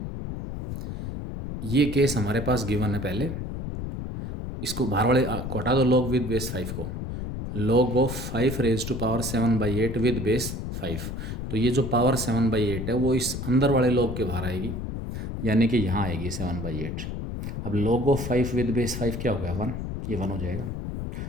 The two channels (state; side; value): noise; left; rumble, 5 dB below the sound